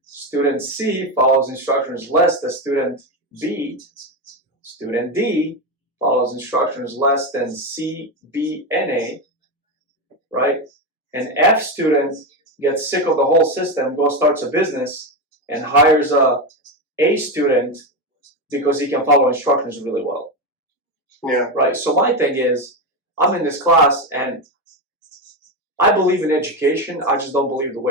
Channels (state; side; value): normal; both; correlation 0.13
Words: Student C follows instructions less than student B. Student D follows instructions less than C, B, and A, right? An F student gets sick of the whole system, goes starts a business, and hires a student because he can follow instructions really well. Yeah. Right. So my thing is, I'm in this class and I believe in education. I just don't believe the